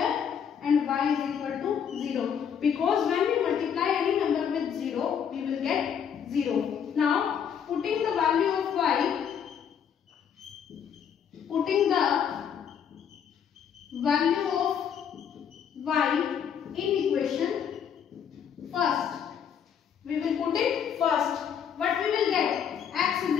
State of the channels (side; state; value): right; quieter; 8.0 dB